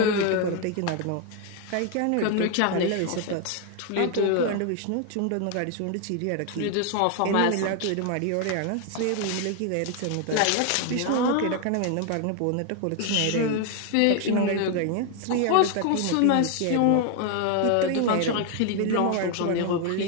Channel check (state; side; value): different; both; correlation 0.00